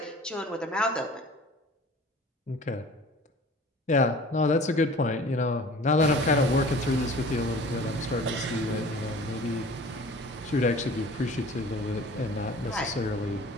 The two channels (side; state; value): both; normal; correlation 0.45